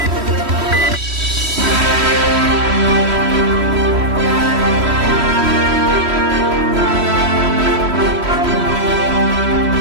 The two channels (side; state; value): left; late; 3.1 ms